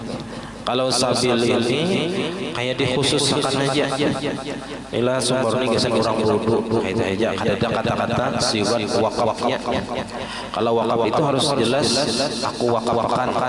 Kalau sabil ini kayak dikhususkan aja. Inilah sumur ini geser orang wudu, itu aja. Ada kata-kata sifat wakafnya. Kalau wakaf itu harus jelas, aku wakafkan.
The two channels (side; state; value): both; identical; correlation 1.00